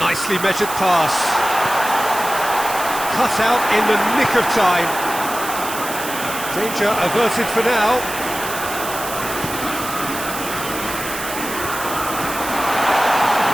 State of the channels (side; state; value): right; noise; hiss, 8 dB below the sound